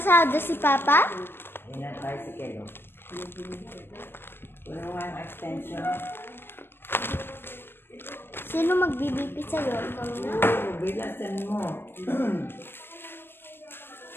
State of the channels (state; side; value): late; right; 0.10 ms